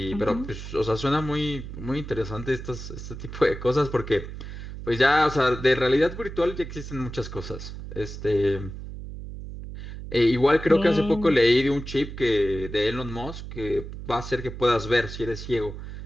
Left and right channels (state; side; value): noise; right; hum, 10 dB below the sound